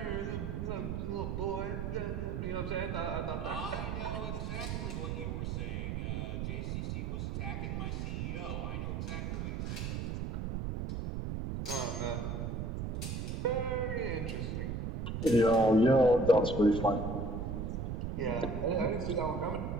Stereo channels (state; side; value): noise; right; rumble, 2 dB below the sound